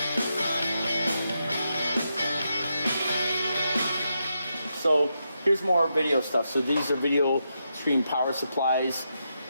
So here's more video stuff. So these are video stream power supplies,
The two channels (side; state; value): both; inverted; correlation -0.84